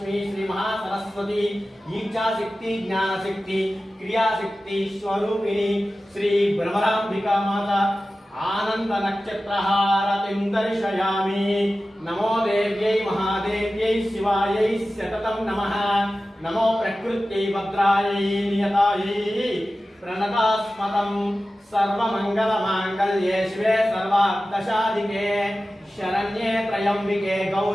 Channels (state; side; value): normal; both; correlation 0.95